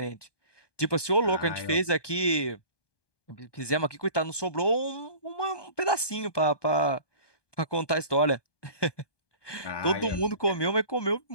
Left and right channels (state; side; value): late; right; 1.2 ms